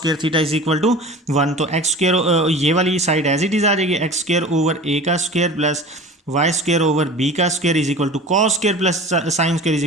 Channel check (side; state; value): both; normal; correlation 0.37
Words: theta is equal to 1। तो एक्स स्क्वायर ये वाली साइड एज इट इज आ जाएगी, एक्स स्क्वायर ओवर ए का square plus y square over b का square is equal to cos square plus sine square is